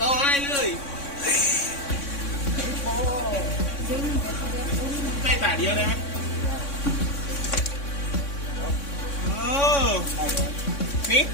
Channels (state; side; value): late; right; 3.6 ms